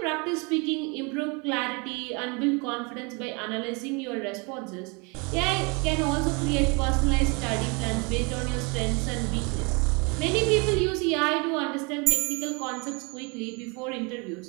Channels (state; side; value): quieter; left; 30.9 dB